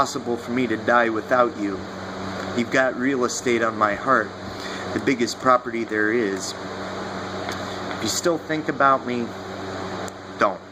for me to die without you. You've got real estate on my heart, the biggest property there is. If you still think about me, don't.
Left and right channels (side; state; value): both; identical; correlation 1.00